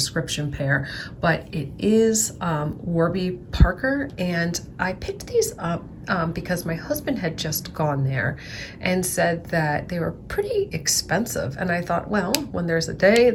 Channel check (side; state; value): both; identical; correlation 1.00